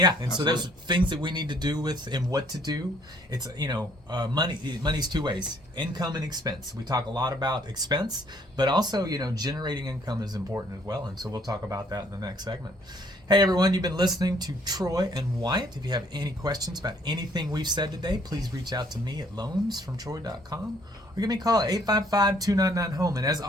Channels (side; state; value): both; normal; correlation 0.63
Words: and so there's things that we need to do and what to do. It's, money's 2 ways, income and expense. We talk a lot about expense, but also, generating income is important as well, and so we'll talk about that in the next segment. Hey everyone, you've been listening to Troy and Wyatt. If you have any questions about anything we've said today, please reach out to me at loansfromtroy.com. Or give me a call at 855-299-HOME. And as